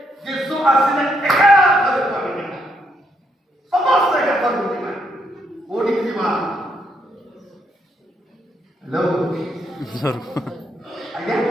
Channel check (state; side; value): normal; both; correlation 0.76